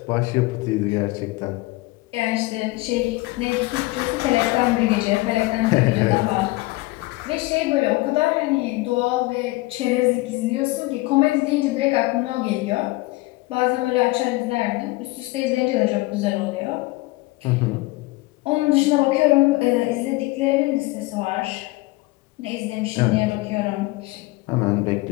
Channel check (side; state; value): right; quieter; 21.4 dB